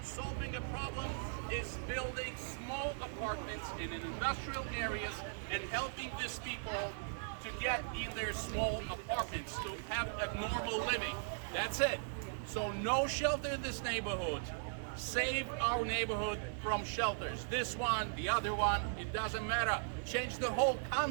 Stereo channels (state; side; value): silent; left; digital silence